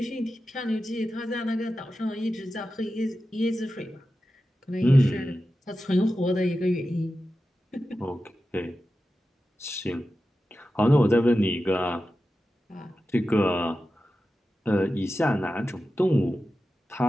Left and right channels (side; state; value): both; normal; correlation 0.92